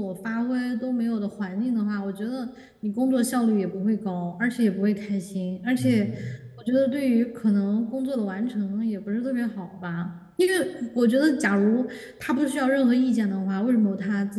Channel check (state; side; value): identical; both; correlation 1.00